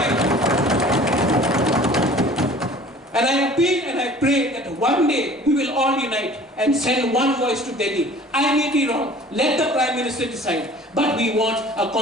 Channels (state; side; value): normal; both; correlation 0.47